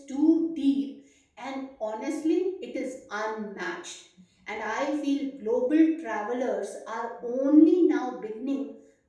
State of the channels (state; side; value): identical; both; correlation 1.00